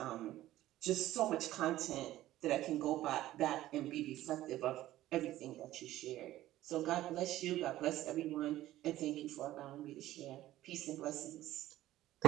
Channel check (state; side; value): quieter; left; 14.7 dB